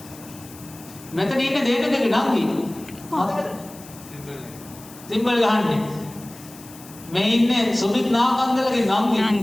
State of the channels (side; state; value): left; noise; hiss, 19 dB below the sound